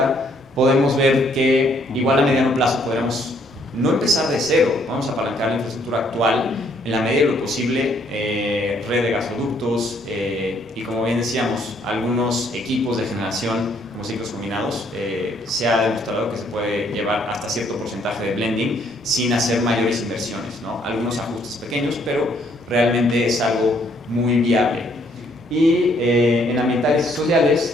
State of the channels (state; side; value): normal; both; correlation 0.67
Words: podemos ver que igual a mediano plazo podremos no empezar de cero, vamos a apalancar la infraestructura actual en la medida de lo posible, red de gasoductos y como bien decíamos, algunos equipos de generación como ciclos combinados, se ha demostrado que se puede llevar hasta cierto porcentaje de blending sin hacer mayores inversiones, ¿no? Algunos ajustes pequeños, pero realmente es algo muy viable. Y en ambientales y